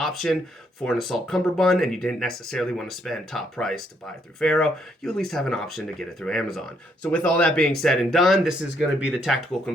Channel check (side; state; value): both; normal; correlation 0.72